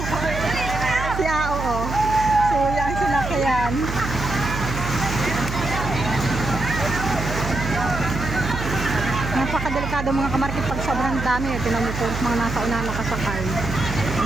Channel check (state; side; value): noise; right; hum, 6 dB below the sound